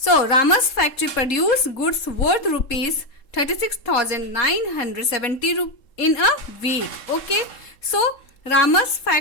Rama's factory produce goods worth rupees 36,970 in a week. Okay. So Rama's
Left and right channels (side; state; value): right; late; 3.7 ms